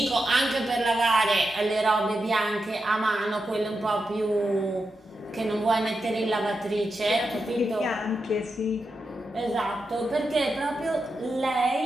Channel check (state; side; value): normal; both; correlation 0.88